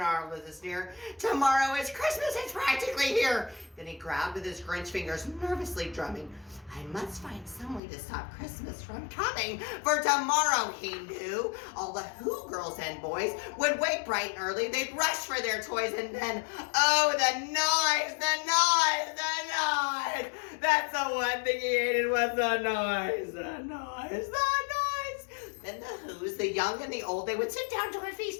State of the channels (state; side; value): drops out; right; at 7.8 s